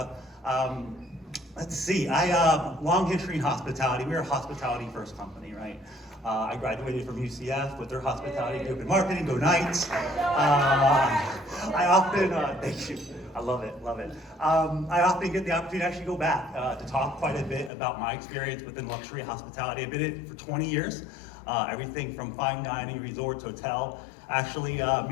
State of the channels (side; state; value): right; drops out; at 17.7 s